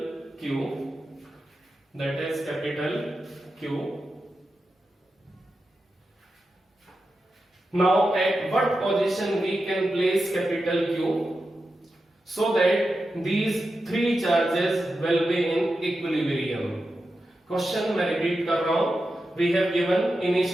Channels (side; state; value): both; normal; correlation 0.90